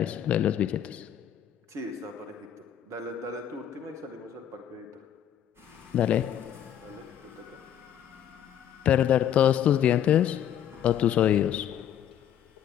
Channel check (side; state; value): right; quieter; 10.0 dB